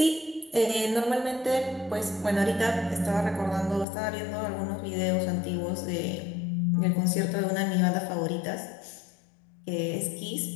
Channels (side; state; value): right; drops out; at 3.9 s